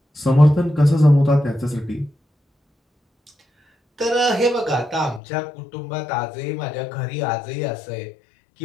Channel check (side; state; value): right; drops out; at 5.2 s